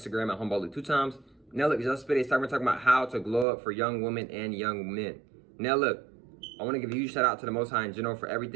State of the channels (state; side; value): drops out; left; at 3.5 s